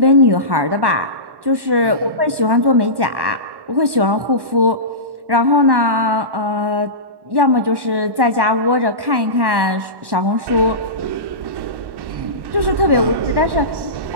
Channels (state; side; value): late; left; 1.1 ms